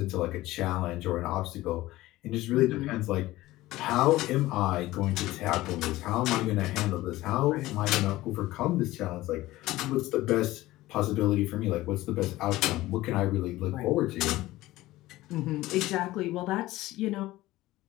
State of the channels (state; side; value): quieter; right; 17.3 dB